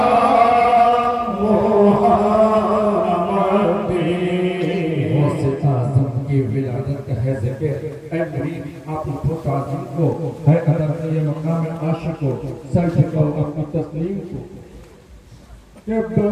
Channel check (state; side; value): identical; both; correlation 1.00